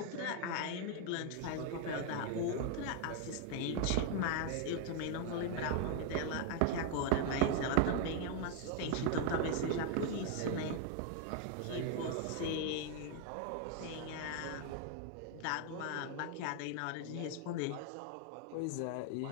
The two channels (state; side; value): different; both; correlation 0.01